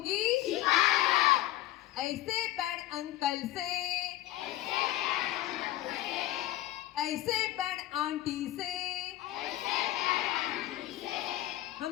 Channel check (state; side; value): quieter; right; 15.3 dB